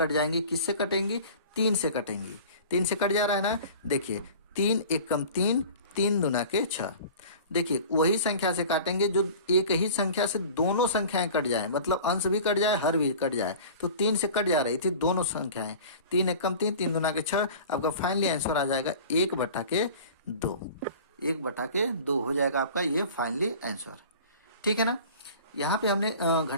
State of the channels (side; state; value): both; inverted; correlation -0.41